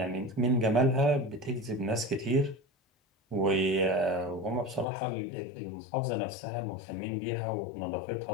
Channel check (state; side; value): drops out; right; at 4.9 s